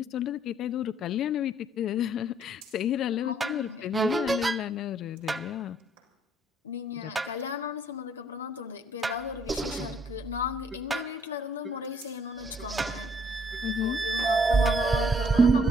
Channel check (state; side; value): normal; both; correlation 0.64